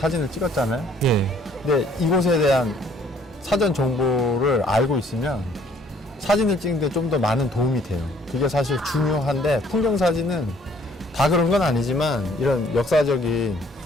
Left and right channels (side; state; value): both; normal; correlation 0.61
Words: 찍었잖아요. 예. 근데 이곳에 대한 사전 정보를 알고 있으면 사진을 찍는데 좀 더 많은 도움이 돼요. 그게 사실 중요한데, 풍경 사진은 다 그런 건 아니지만 이런 역사적인